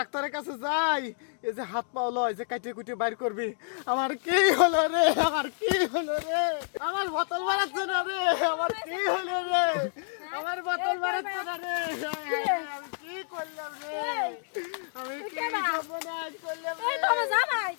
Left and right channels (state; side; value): silent; right; digital silence